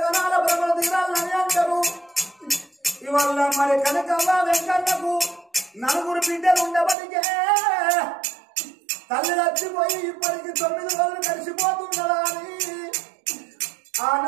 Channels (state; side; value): drops out; left; at 7.0 s